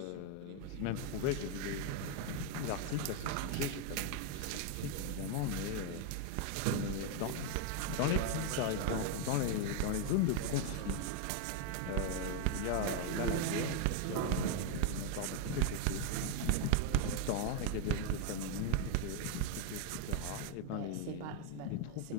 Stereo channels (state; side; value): different; both; correlation 0.00